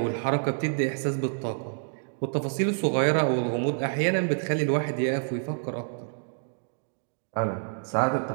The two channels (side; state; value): left; silent; digital silence